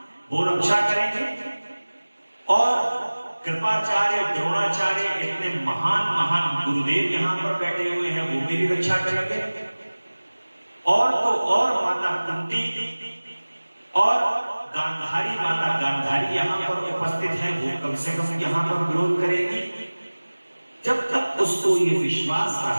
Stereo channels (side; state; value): both; inverted; correlation -1.00